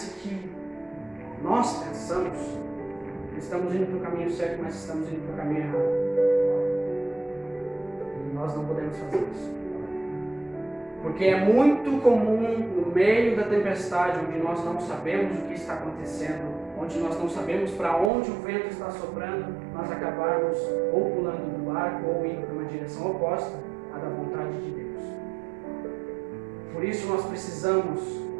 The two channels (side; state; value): left; drops out; at 18.1 s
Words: que nós pensamos que estamos indo para o caminho certo, mas estamos indo para o caminho errado. E nós não podemos fazer isso. Porque é muito comum no meio da tempestade, onde nós não sabemos o que está acontecendo, onde nós não sabemos para onde o vento está soprando, nós acabarmos ou pulando do barco ou indo para uma direção oposta à da vontade de Deus. Por isso nós precisamos,